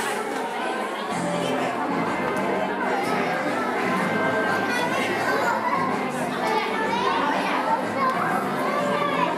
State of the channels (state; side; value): identical; both; correlation 1.00